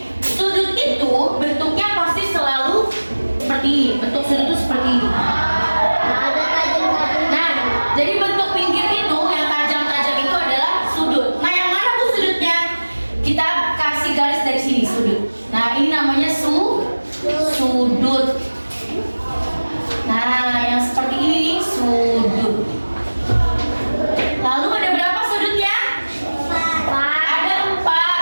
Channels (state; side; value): inverted; both; correlation -1.00